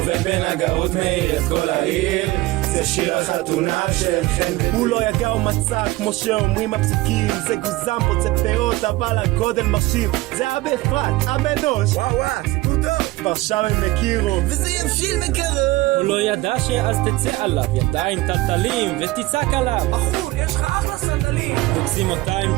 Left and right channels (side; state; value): left; quieter; 19.3 dB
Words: בנגרות מאיר את כל העיר, זה שיר החתונה של חן. הוא לא יגע ומצא כמו שאומרים הפסוקים, זה גוזם פוצע פאות אבל הגודל מרשים, זה היה באפרת, הבנוש. וואו, סיפור טוב. כבר שם הם הכירו וזה יבשיל מקרוב. הוא לא ידע שאז תצא עליו ידיים טלטלים ותצעק עליו, בחור, יש לך אחלה סנדלים. תוקסים אותה עם